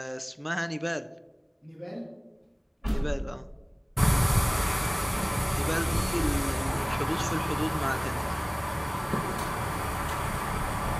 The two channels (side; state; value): both; identical; correlation 1.00